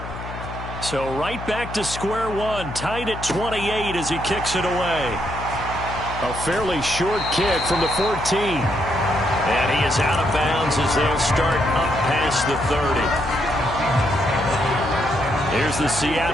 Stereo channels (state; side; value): noise; left; hum, 10 dB below the sound